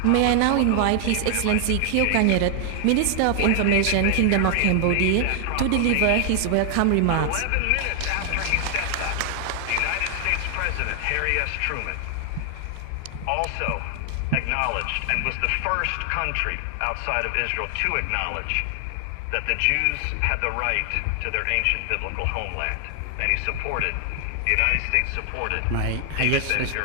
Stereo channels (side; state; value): both; different; correlation 0.00